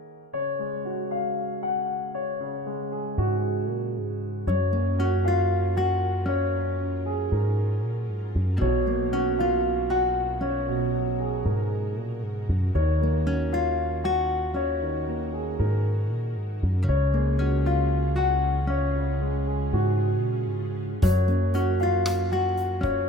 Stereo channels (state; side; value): normal; both; correlation 0.53